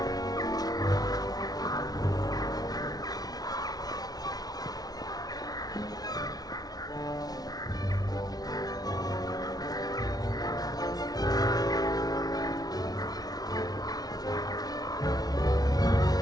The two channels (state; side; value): late; right; 0.19 ms